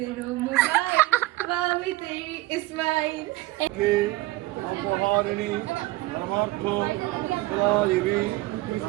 মোবাইল বাবি তেরি ইসমাইল অপহারিণী পরমার্থ দেবী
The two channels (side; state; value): left; quieter; 18.8 dB